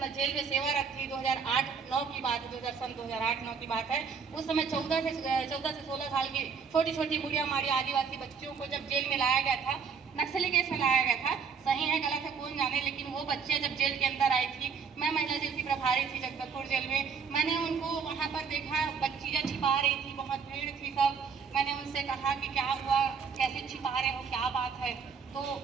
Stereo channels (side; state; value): left; quieter; 6.0 dB